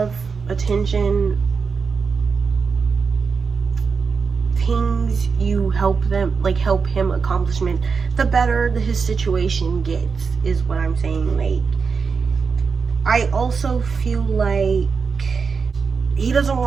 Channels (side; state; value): left; quieter; 5.3 dB